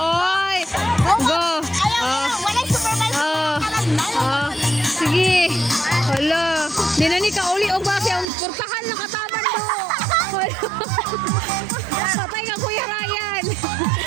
Go. Walang supervisor. Sige. Hala. Di na ni kauli og base ang portahan na kataban mo. Patay ka Kuya Ryan.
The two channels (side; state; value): left; drops out; at 8.2 s